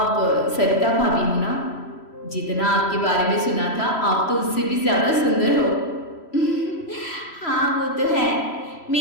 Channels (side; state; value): right; late; 3.0 ms